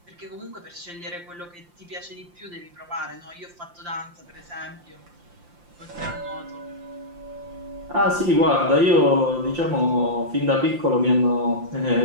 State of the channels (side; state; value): left; late; 5.7 ms